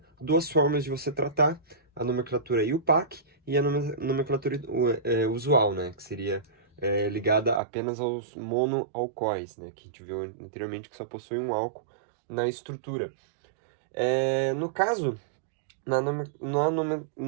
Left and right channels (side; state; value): left; drops out; at 7.6 s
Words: duas formas de você tratar, a nomenclatura IUPAC e a nomenclatura usual, né, que seria ligada apenas aos monoalcoóis, né, que a gente viu anteriormente que só possui um álcool na estrutura. No caso, na